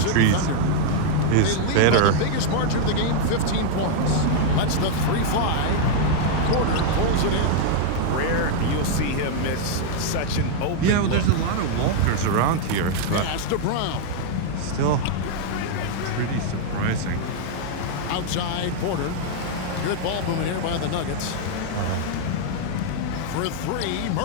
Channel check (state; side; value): different; both; correlation 0.00